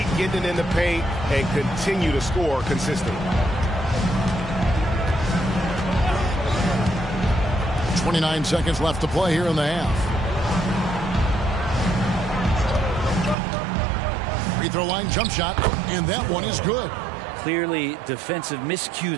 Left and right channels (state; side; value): drops out; left; at 13.4 s